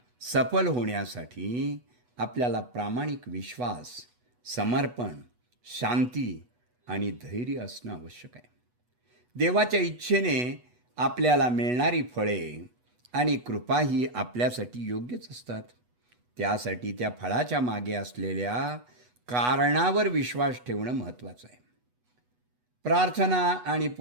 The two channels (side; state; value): left; late; 8.2 ms